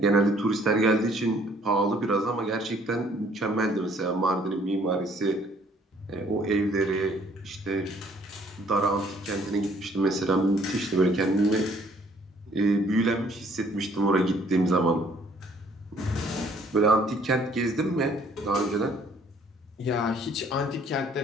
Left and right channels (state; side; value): normal; both; correlation 0.61